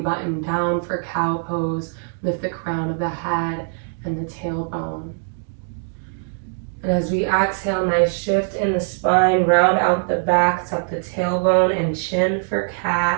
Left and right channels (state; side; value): silent; left; 64 dB below the other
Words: down for cow pose, lift the crown of the head and the tailbone. And as we exhale, nice shift in the spine, round out the back, tuck the tailbone and chin for